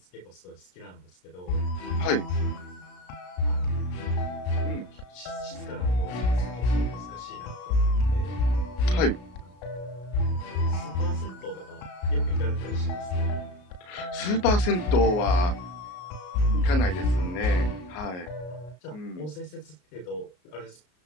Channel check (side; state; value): right; late; 33 ms